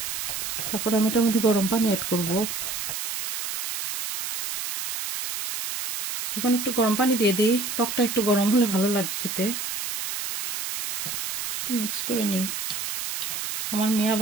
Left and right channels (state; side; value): noise; right; hiss, 4 dB below the sound